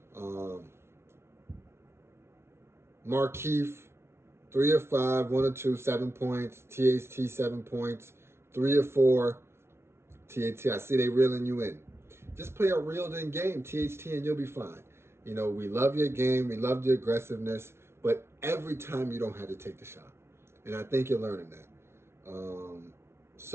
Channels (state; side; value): late; left; 0.12 ms